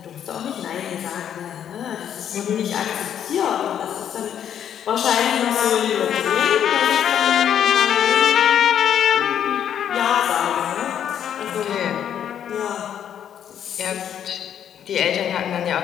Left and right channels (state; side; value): quieter; right; 9.4 dB